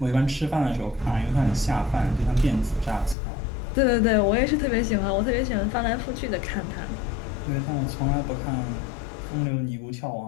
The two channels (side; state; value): right; drops out; at 3.2 s